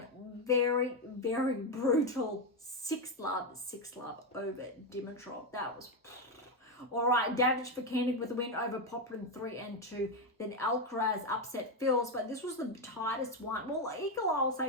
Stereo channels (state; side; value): normal; both; correlation 0.07